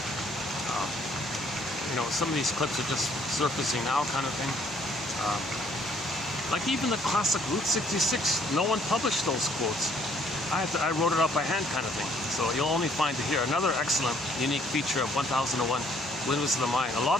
Some of these clips are just surfacing now, kind of thing. Like even the classic Route 66, no one published those quotes. I wrote it up by hand, kind of thing. So you'll only find it here. Another excellent, unique feature of 1001 Windmills of the Mind. A lot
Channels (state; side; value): normal; both; correlation 0.63